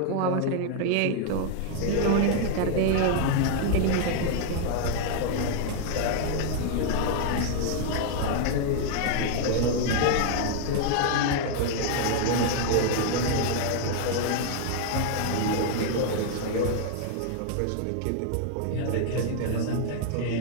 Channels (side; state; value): both; different; correlation 0.00